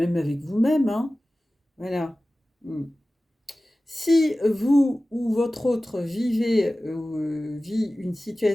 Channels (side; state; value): both; normal; correlation 0.96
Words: avec vous-même. Hein. Voilà. Si vous ou votre autre vit une